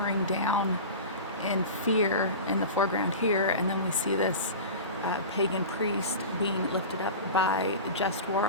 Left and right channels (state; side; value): inverted; both; correlation -0.31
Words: down in fear in the foreground here, and then we see this pagan priest being lifted up by just war